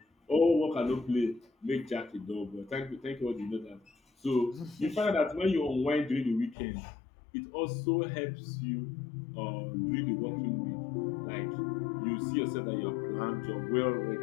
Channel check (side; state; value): right; drops out; at 6.6 s